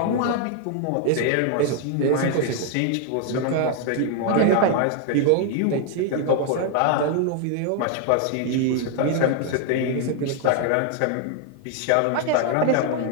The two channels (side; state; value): both; different; correlation 0.00